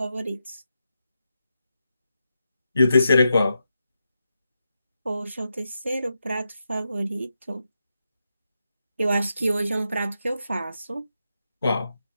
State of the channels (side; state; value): both; inverted; correlation -0.87